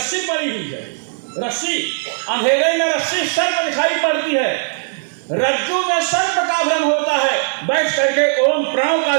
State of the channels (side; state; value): left; silent; 56 dB below the other